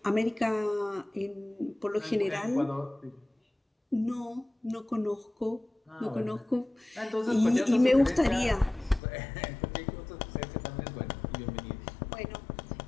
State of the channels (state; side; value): drops out; right; at 9.0 s